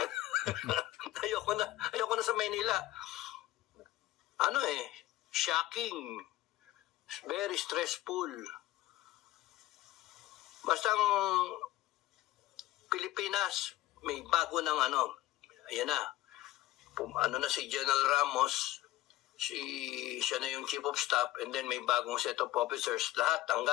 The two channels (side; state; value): right; quieter; 15.9 dB